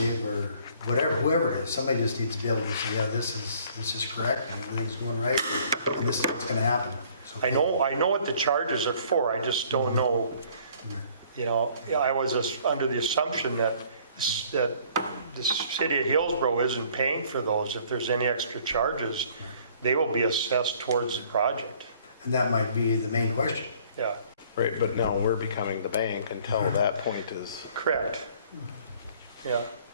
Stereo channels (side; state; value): both; inverted; correlation -0.57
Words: or whatever, whoever it is, somebody just needs to be able to say, yeah, this is correct and everything's going right and this is what's gonna happen. So- I know what the charges are for. I just don't know, I was under the assumption that the city of Hillsboro isn't paying for those. If there's any extra charges, they will be assessed towards the project. And that might be the main question. Yeah, Right, but now we're becoming the bank until that point is, correct. Yeah.